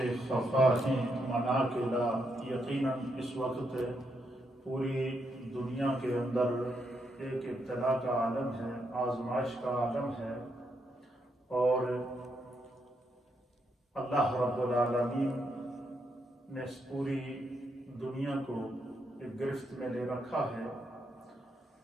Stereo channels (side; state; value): both; normal; correlation 0.79